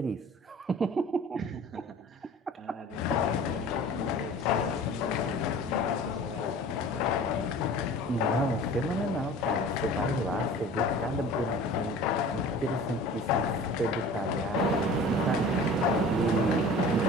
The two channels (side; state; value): both; normal; correlation 0.42